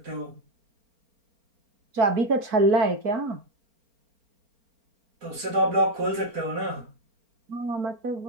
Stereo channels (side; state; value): left; late; 4.4 ms